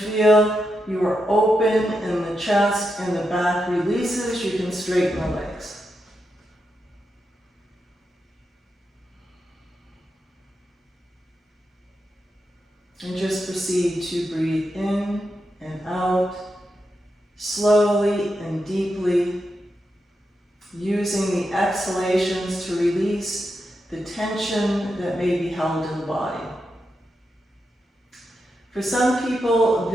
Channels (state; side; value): normal; both; correlation 0.86